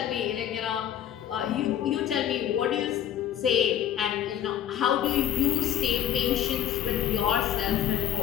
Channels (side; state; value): right; quieter; 10.7 dB